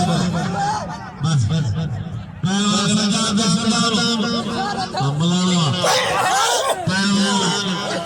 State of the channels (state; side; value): identical; both; correlation 1.00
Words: बस पहलवान सजा दे सलाम अमलावा पहलवान